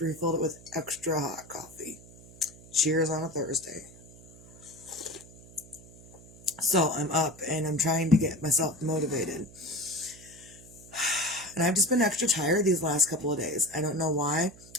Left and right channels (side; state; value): right; noise; hum, 21 dB below the sound